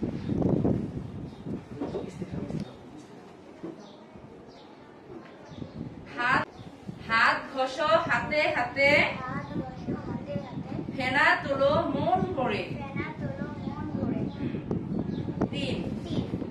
হাত ঘষো হাতে হাতে, ফেনা তোলো মন ভরে। 3.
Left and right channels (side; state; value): both; identical; correlation 1.00